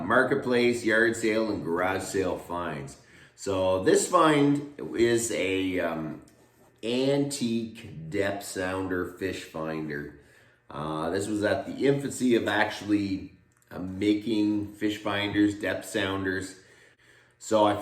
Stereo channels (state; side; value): identical; both; correlation 1.00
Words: Marketplace, Yard Sale, and Garage Sale finds. So this find is a antique depth sounder fish finder. This was at the infancy of actually making fish finders, depth sounders. So I